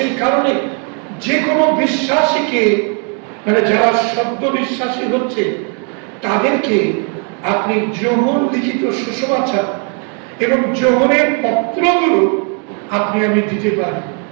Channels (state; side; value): quieter; left; 39.9 dB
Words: কারণে যে কোনো বিশ্বাসীকে, মানে যারা শব্দ বিশ্বাসী হচ্ছে, তাদেরকে আপনি যোহন লিখিত সুসমাচার এবং যোহনের পত্রগুলো আপনি আমি দিতে পারি।